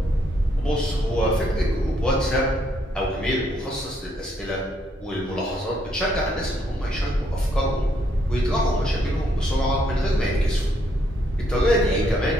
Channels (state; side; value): normal; both; correlation 0.72